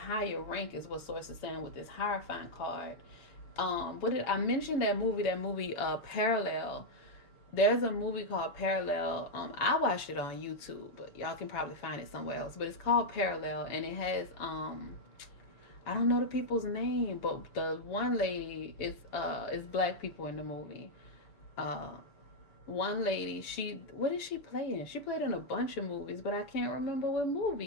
rank is what source is saying with this Hierophant card. What did I mention that movie? That movie, Parallel. There's a movie called Parallel. I watched it on YouTube, but y'all can probably find it somewhere else. But it's called Parallel, and it has I don't know the people's name, but the one lady is black people in the movie. Uh, One lady, she what did she play in? She played in a bunch of movies, but I can't remember what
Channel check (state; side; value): late; right; 7.1 ms